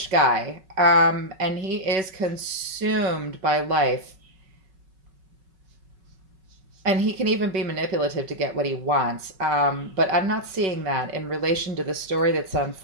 guy, and he is consumed by life. And he can even be manipulative to get what he wants. But I'm not seeing that in relation to the story that's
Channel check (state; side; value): late; left; 5.3 ms